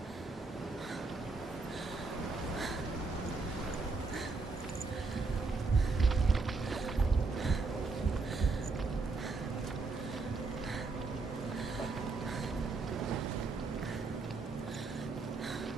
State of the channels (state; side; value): quieter; left; 3.9 dB